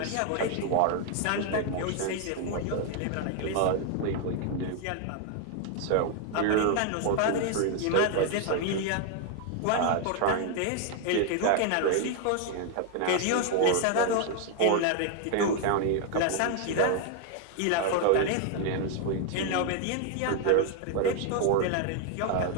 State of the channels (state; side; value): different; both; correlation 0.00